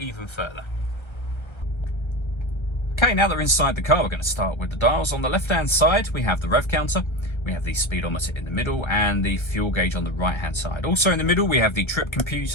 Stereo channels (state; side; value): late; right; 1.3 ms